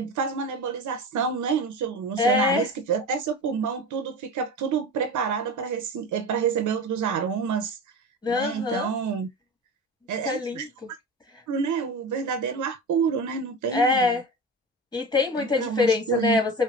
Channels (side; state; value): both; normal; correlation 0.28